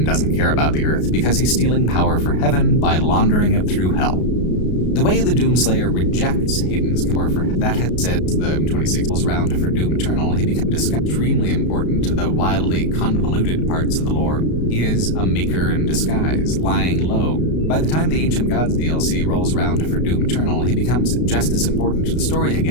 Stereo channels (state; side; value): late; right; 33 ms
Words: doesn't care about the Earth because he's stealing power for heaven by laundering it through Hell. The way the Doomslayer rejects Hayden's power for that has said the 26 round for Doom Eternal, he becomes extremely important to the wildly convoluted parts of the lore. He is a maker in disguise, lying low. By the time the Ancient Gods DLC rolls around for Doom Eternal, he becomes just as important to the story